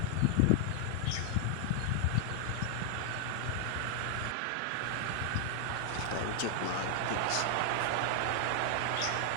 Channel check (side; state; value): both; different; correlation 0.00